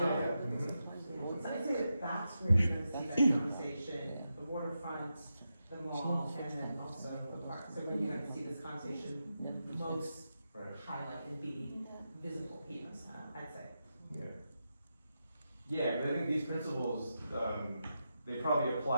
I say that's where you're gonna see that conversation, the waterfront, the mall, and then also the park. So when you're gonna see this conversation most highlight and be visible here, I'd say. Yeah, but I think these principles, they probably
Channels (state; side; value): inverted; both; correlation -0.88